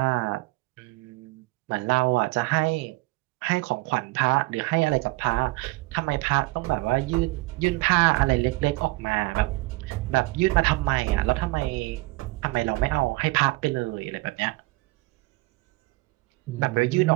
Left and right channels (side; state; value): left; quieter; 22.3 dB